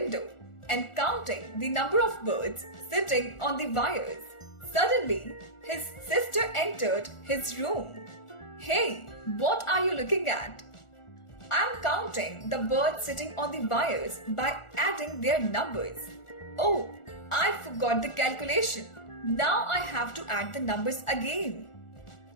and counting the number of birds sitting on the wires. Suddenly, his sister entered his room. Hey, what are you looking at? I'm counting the birds sitting on the wires by adding their numbers. Oh, I forgot the calculation. Now I have to add the numbers again.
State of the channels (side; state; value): right; late; 1.4 ms